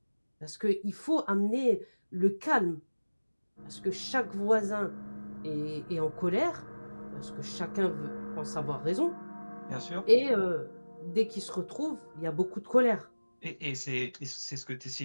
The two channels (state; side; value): inverted; both; correlation -1.00